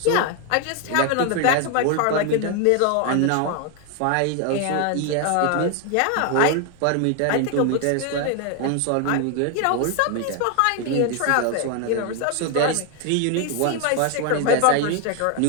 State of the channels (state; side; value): different; both; correlation 0.01